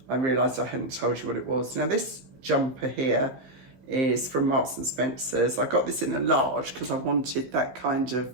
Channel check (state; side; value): late; left; 15 ms